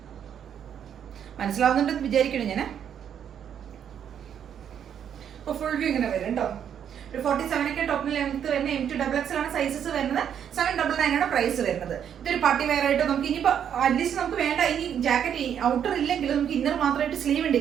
മനസ്സിലാവുന്നുണ്ടെന്ന് വിചാരിക്കണം ഞാൻ. അപ്പൊ ഫുൾ വ്യൂ ഇങ്ങനെ വരും കേട്ടോ. ഒരു 47 ഒക്കെ ടോപ്പിന് ലെങ്ത് വരുന്ന MT XXL ആണ് സൈസസ് വരുന്നത്. 799 ആണ് പ്രൈസ് വരുന്നത്. ഇതൊരു പാർട്ടി വെയർ ആയിട്ട് നമുക്ക് ഇനിയിപ്പോ അറ്റ്ലീസ്റ്റ് നമുക്ക് വേണ്ട ഇനി ജാക്കറ്റ് ഔട്ടർ ഇല്ലെങ്കിൽ നമുക്ക് ഇന്നർ മാത്രമായിട്ട് സ്ലീവ് ഉണ്ട്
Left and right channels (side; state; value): left; quieter; 8.8 dB